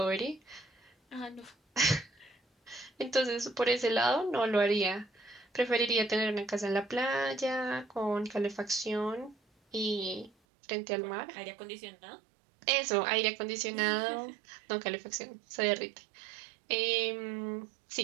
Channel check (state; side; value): drops out; left; at 10.3 s